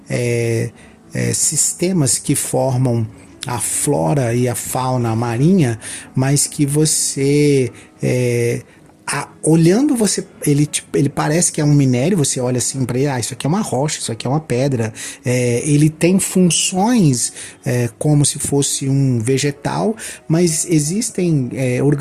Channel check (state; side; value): identical; both; correlation 1.00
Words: sistemas que formam a flora e a fauna marinha, mas que você olhando ele parece que é um minério. Você olha assim para ele, isso aqui é uma rocha, isso aqui é uma pedra. Ele tem funções como se fosse um vegetal, mas existem